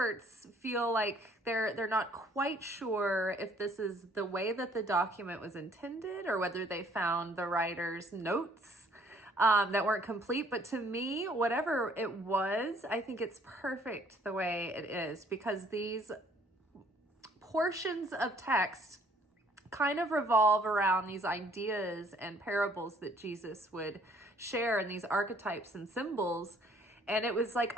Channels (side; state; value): both; normal; correlation 0.60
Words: feel like they're not quite sure if this is the way that the document was intended or whether they found the writer's notes that weren't complete. But to me, whatever it was, I think it's perfect the way it is, because these portions of text kind of revolve around these ideas and parables that Jesus would share, and these archetypes and symbols. And it was like